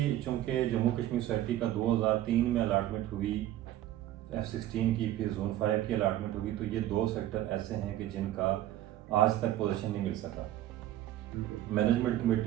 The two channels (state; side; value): quieter; left; 13.6 dB